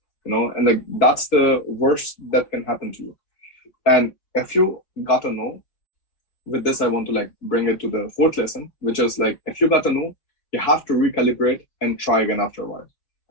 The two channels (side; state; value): right; late; 4.8 ms